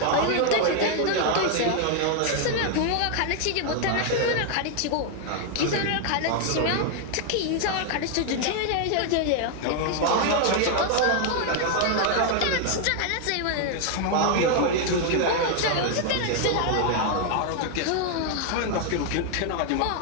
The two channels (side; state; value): both; different; correlation 0.00